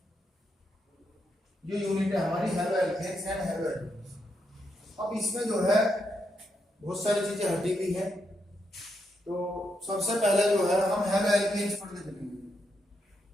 है हमारी halo alkanes and halo alkanes. अब इसमें जो है बहुत सारी चीजें हटी हुई है। तो सबसे पहले जो है हम हेलो एल्केन्स पढ़ के चलेंगे।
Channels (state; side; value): normal; both; correlation 0.81